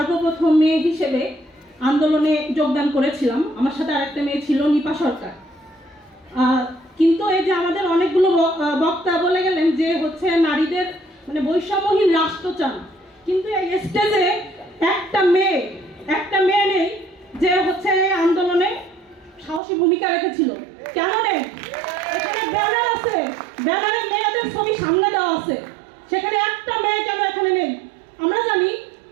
মেয়ে হিসেবে আন্দোলনে যোগদান করেছিলাম। আমার সাথে আরেকটা মেয়ে ছিল, নিপা সরকার। কিন্তু এই যে আমাদের অনেকগুলো বক্তা বলে গেলেন যে হচ্ছে নারীদের মানে বৈষম্যহীন রাষ্ট্র চান, কিন্তু এই স্টেজে একটা মেয়ে নেই যে হচ্ছে এই আন্দোলনে সাহসী ভূমিকা রেখেছিল। কেন নেই? এখানে ব্যানার আছে, ব্যানারে মেয়েদের ছবি সামনে দেওয়া আছে, সেখানে একটা মেয়ে কেন এখানে নেই? আমরা জানি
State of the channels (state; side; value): drops out; left; at 19.6 s